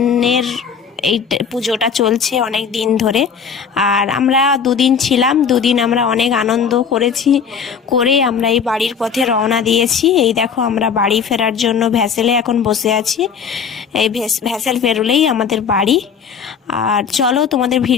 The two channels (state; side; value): quieter; right; 6.7 dB